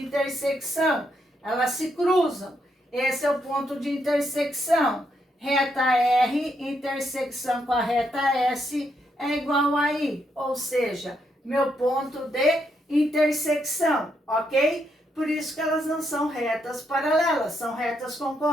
Elas se cruzam. Esse é o ponto de intersecção. Reta R, intersecção com a reta S, é igual a I. Ou seja, meu ponto de intersecção, ok? Por isso que elas não são retas paralelas, são retas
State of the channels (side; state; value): both; normal; correlation 0.78